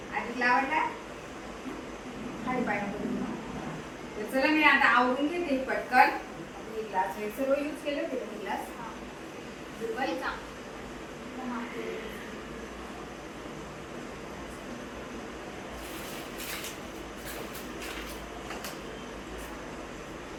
आधीला आवडला खाली पाहिजे. चला मी आता आवरून घेते पटकन. हे ग्लास हे सर्व यूज केले होते का ग्लास? दुपारीचा.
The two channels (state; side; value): identical; both; correlation 1.00